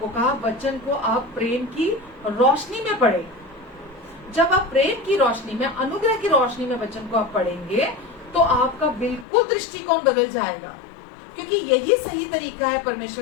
कहा, वचन को आप प्रेम की रोशनी में पढ़े। जब आप प्रेम की रोशनी में, अनुग्रह की रोशनी में वचन को आप पढ़ेंगे तो आपका बिल्कुल दृष्टिकोण बदल जाएगा, क्योंकि यही सही तरीका है परमेश्वर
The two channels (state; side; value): drops out; right; at 9.2 s